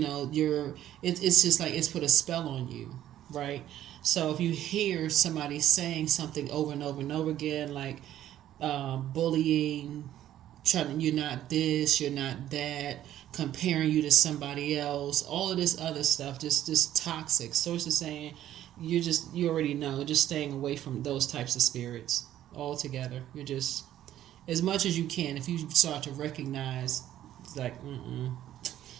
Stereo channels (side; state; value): left; quieter; 12.2 dB